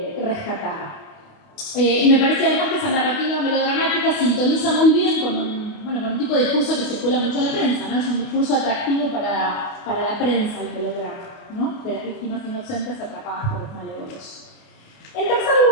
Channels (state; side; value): late; right; 28 ms